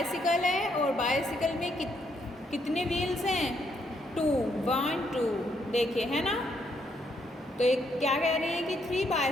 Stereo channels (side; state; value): both; normal; correlation 0.74